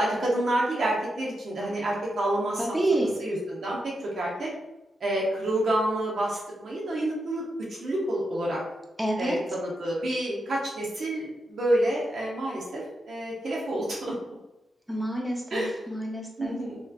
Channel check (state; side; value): normal; both; correlation 0.85